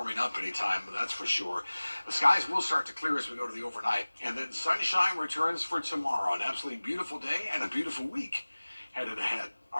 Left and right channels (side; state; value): both; inverted; correlation -1.00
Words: up anytime, that's for sure. The skies will start to clear as we go to the overnight. And then sunshine returns for tomorrow. An absolutely beautiful day and a beautiful week headed ahead